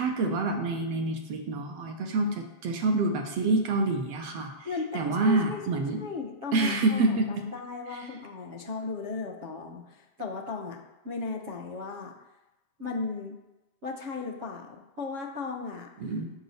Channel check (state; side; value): late; left; 7.9 ms